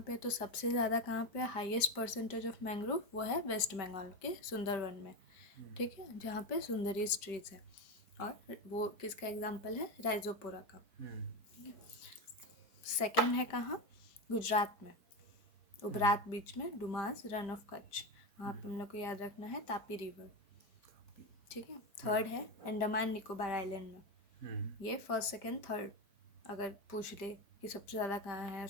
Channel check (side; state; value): right; late; 5.1 ms